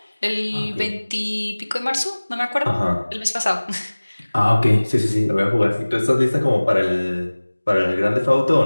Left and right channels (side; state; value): both; inverted; correlation -1.00